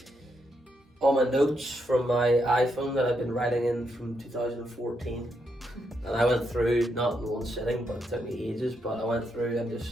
all my notes from my iPhone that I've been writing in from 2014, and I went through, not in one sitting, but it took me ages, but I went through and just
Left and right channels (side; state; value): both; normal; correlation 0.80